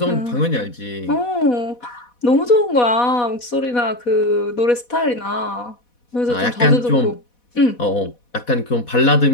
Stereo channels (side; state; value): right; late; 4.1 ms